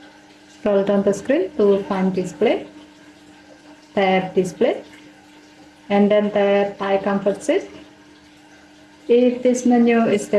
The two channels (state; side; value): identical; both; correlation 1.00